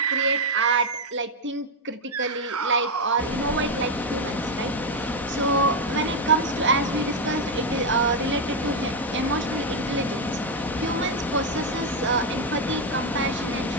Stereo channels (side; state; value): both; normal; correlation 0.03